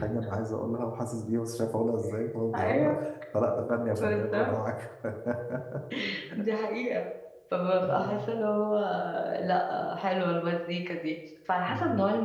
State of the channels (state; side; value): identical; both; correlation 1.00